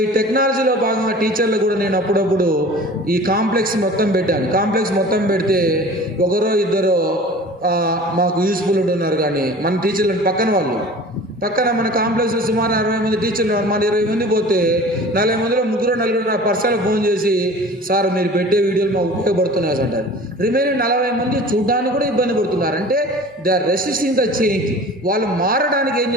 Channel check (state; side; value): normal; both; correlation 0.42